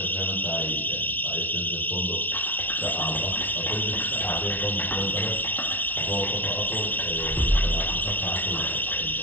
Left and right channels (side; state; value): right; late; 0.083 ms